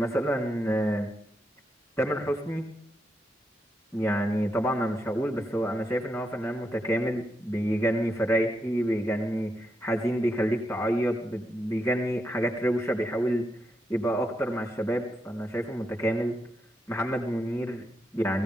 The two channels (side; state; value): both; normal; correlation 0.83